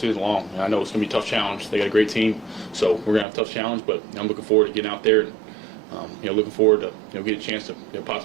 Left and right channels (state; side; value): drops out; left; at 3.2 s